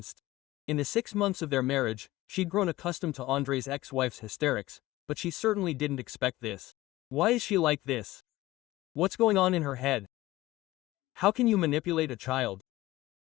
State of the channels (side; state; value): right; quieter; 17.6 dB